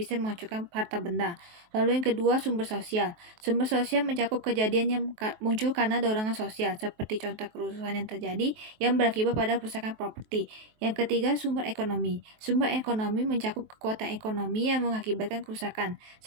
menghancurkan harta benda. Lalu yang kedua, sumber sosial. Sumber sosial mencakup kejadian yang muncul karena dorongan sosial, seperti contoh kerusuhan yang terjadi yang berakibat pada kerusakan properti. Yang ketiga, sumber ekonomi. Sumber ekonomi mencakup kekuatan ekonomi yang mengakibatkan kerusakan,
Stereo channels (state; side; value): late; left; 23 ms